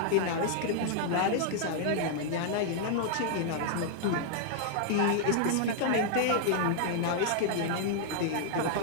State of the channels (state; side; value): different; both; correlation -0.01